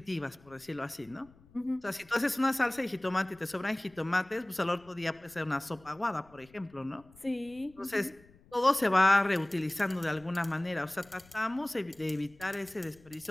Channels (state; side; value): noise; left; rumble, 27 dB below the sound